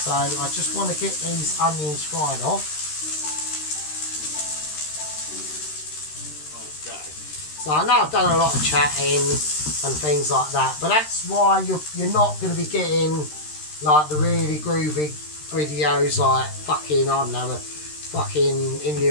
I just want to get these onions fried off. So I know I've done a lot of chatting and things like that, but that's why you're not going to be getting like the really groovy videos like fucking, I don't know, fucking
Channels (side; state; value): right; late; 13 ms